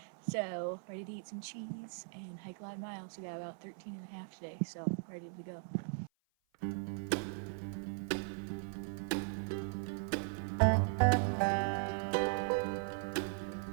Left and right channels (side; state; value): left; silent; 52 dB below the other